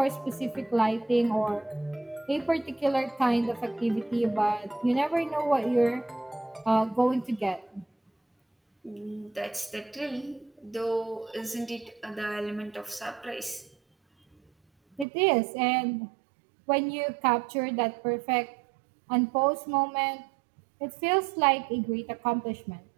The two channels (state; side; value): drops out; left; at 15.1 s